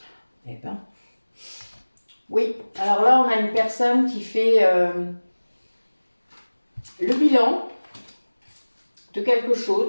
Eh ben. Oui, alors là, on a une personne qui fait le bilan de quelque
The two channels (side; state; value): both; inverted; correlation -1.00